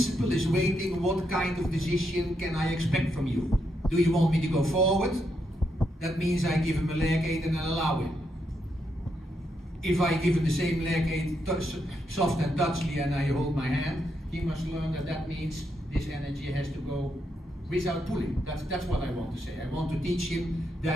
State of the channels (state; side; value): normal; both; correlation 0.80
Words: is waiting, what kind of decision can I expect from you? Do you want me to go forward? That means I give him a leg aid and I allow him. If I give him the same leg aid, soft and touchly, and I hold my hand, he must learn that means this energy has to go without pulling. That's what I want to say. I want to teach him